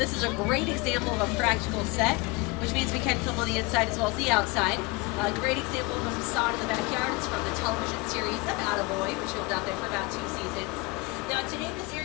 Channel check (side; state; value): right; quieter; 25.4 dB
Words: is a great example of a practical set, which means we can film on the inside as well as the outside. A great example of a facade in the backyard is from the television series About a Boy, which filmed out there for about 2 seasons. Now today this